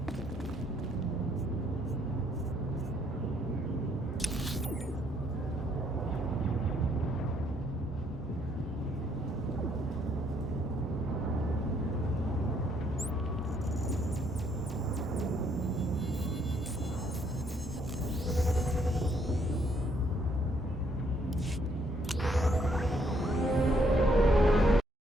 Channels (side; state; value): both; normal; correlation 0.69